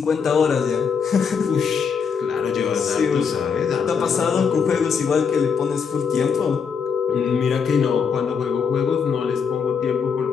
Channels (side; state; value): right; quieter; 6.2 dB